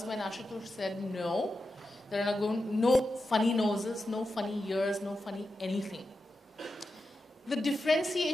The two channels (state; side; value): normal; both; correlation 0.90